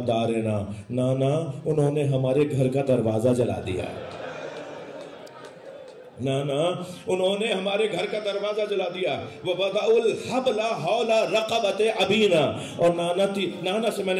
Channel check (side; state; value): both; identical; correlation 1.00